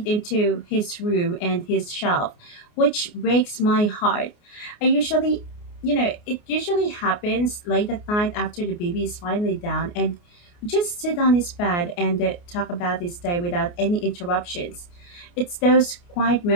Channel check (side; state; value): right; late; 29 ms